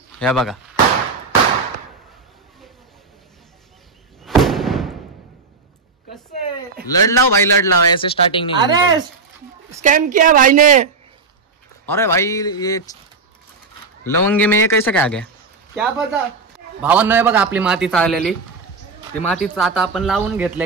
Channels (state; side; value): quieter; left; 4.3 dB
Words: हे बघा कसं लड़ लाओ भाई, लड़ लाओ, ऐसे स्टार्टिंग नहीं। अरे स्कैम किया भाई ने। अरे भाई ये लवंगी में ये कैसे काय गया क्या पता। भावांनो, हे बघा आपली माती चाललेली, ती मातीच आता आपण लावून